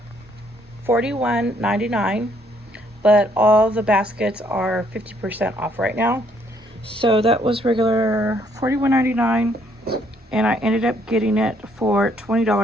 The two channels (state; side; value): normal; both; correlation 0.67